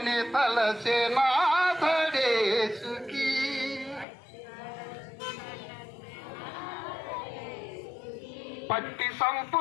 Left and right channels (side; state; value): right; drops out; at 4.0 s